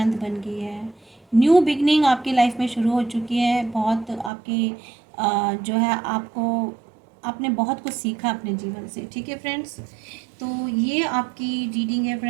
बन गई है। न्यू बिगनिंग आपकी लाइफ में शुरू हो चुकी है। बहुत आपकी जो है आपको, आपने बहुत कुछ सीखा अपने जीवन से। ठीक है फ्रेंड्स, तो ये आपकी रीडिंग है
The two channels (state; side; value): drops out; left; at 4.3 s